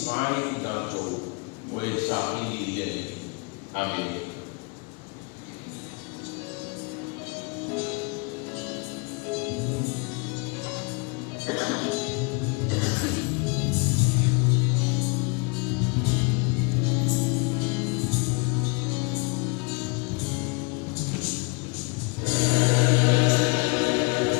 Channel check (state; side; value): quieter; right; 32.0 dB